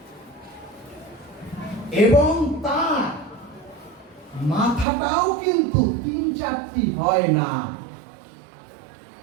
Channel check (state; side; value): drops out; left; at 4.9 s